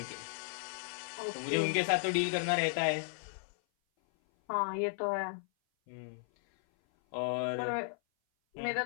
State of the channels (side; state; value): right; silent; 54 dB below the other